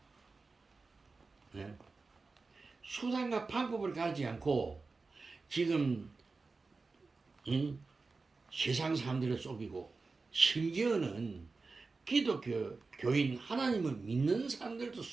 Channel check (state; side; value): quieter; left; 4.0 dB